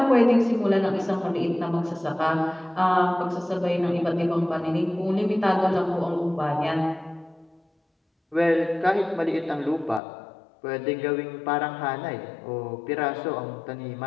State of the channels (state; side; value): drops out; right; at 10.0 s